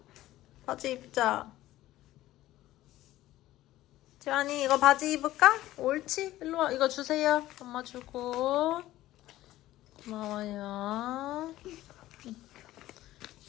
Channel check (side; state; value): right; quieter; 15.4 dB